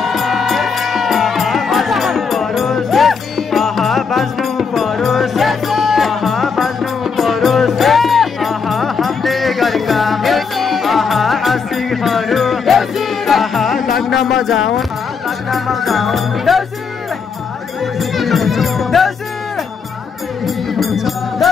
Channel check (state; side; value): quieter; right; 5.6 dB